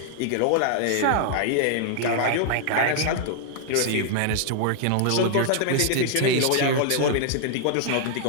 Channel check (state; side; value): different; both; correlation -0.01